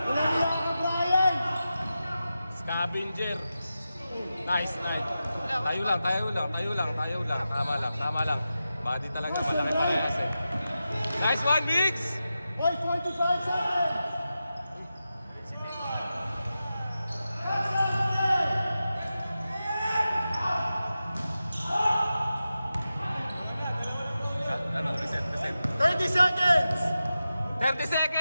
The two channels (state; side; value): inverted; both; correlation -0.92